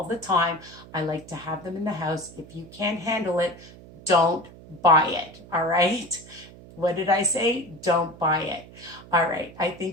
the time. I like to have them in the house. If you can't handle it, don't buy it, all right? What did I say? Don't buy it. All right, I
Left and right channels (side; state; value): right; noise; hum, 19 dB below the sound